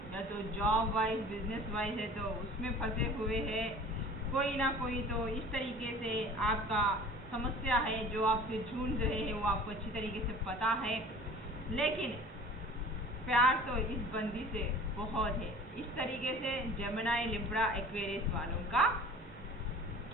या तो जॉब वाइज बिजनेस वाइज है तो उसमें फंसे हुए हैं, कोई ना कोई तो इस तरीके से आपका समस्या है जो आपसे जूझ रहे हैं, वो आपको अच्छी तरीके से पता है। लेकिन प्यार तो इस बंदी से बहुत है, इस तरीके से जेमिनी, लिब्रा, एक्वेरियस वालों का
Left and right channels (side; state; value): both; normal; correlation 0.44